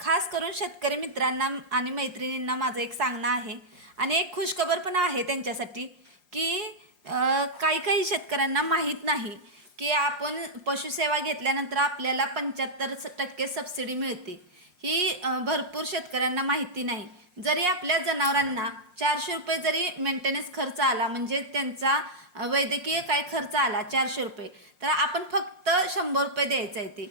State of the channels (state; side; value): late; left; 5.6 ms